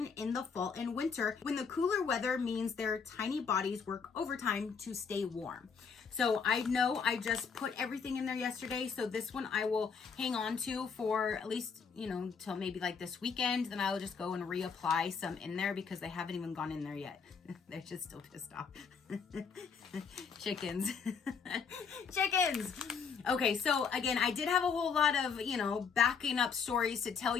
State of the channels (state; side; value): quieter; right; 5.9 dB